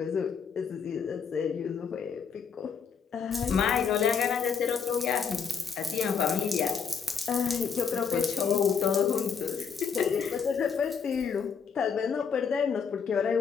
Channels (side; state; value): right; quieter; 6.3 dB